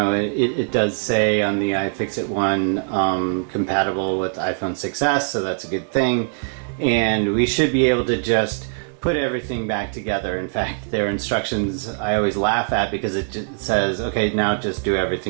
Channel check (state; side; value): silent; left; digital silence